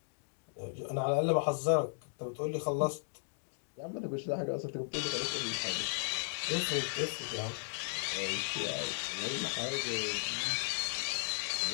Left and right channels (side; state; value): right; silent; digital silence